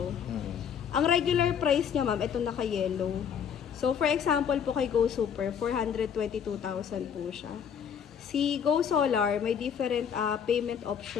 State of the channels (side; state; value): right; quieter; 7.8 dB